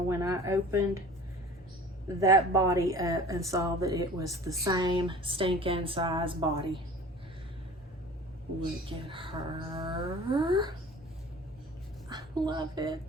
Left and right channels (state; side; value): normal; both; correlation 0.42